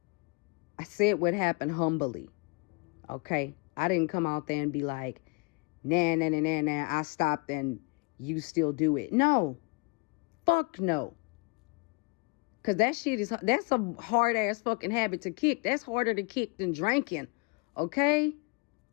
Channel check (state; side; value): quieter; right; 29.7 dB